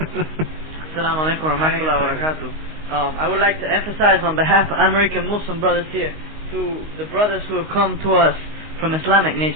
Assalamu alaikum wa rahmatullahi wa barakatuh. I would like to emphasize on behalf of American Muslim brothers here, to the brothers who have come to us from Islamic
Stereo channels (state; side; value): late; left; 19 ms